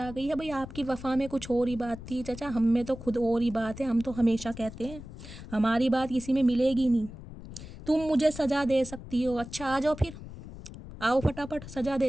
गई है भाई आपकी वफा में कुछ और ही बात थी। चचा हम में तो खुद और ही बात है, हम तो हमेशा कहते हैं हमारी बात किसी में मिलेगी नहीं। तुम मुझे सज़ा दे सकती हो, अच्छा आ जाओ फिर, आओ फटाफट सज़ा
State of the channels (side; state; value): left; noise; rumble, 13 dB below the sound